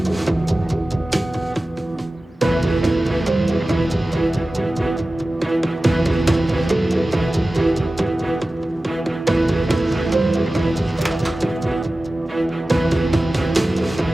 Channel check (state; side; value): normal; both; correlation 0.96